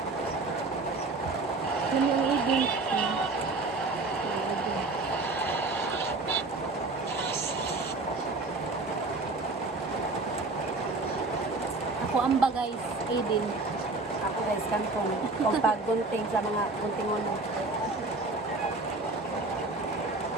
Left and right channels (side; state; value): left; quieter; 3.4 dB